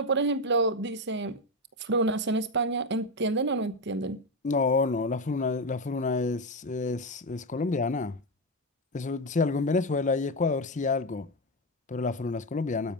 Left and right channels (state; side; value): normal; both; correlation 0.10